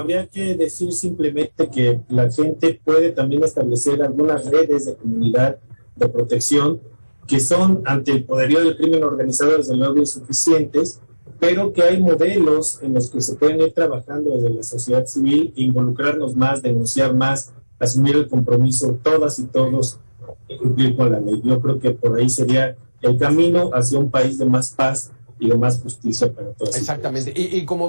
que decir simplemente que la gente puede también establecer algunas redes de comunidad de protección que son, ante el poderío del crimen organizado, desde luego insuficientes, pero que hay modelos en los que se pueden ir trabajando desde la sociedad civil, involucrarnos más, denunciar más, asumir el compromiso todas y todos de cumplir con la ley. Yo creo que por ahí sería el camino hacia un país de más paz y de más justicia para todos. Exactamente. Y como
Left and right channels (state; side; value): inverted; both; correlation -1.00